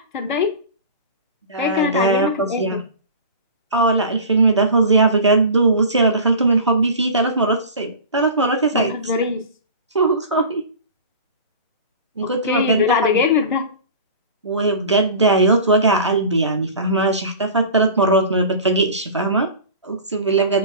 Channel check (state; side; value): inverted; both; correlation -0.36